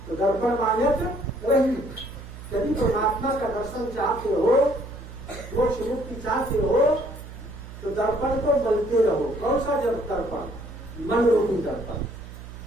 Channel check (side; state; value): right; noise; hum, 14 dB below the sound